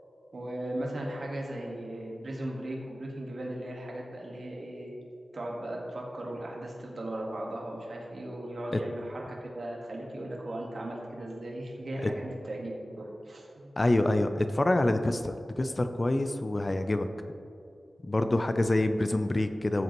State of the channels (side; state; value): both; normal; correlation 0.97